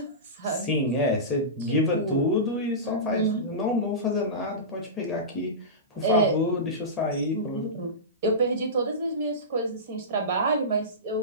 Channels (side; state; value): both; normal; correlation -0.20